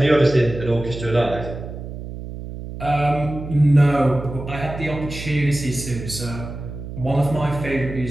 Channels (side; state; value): right; noise; hum, 10 dB below the sound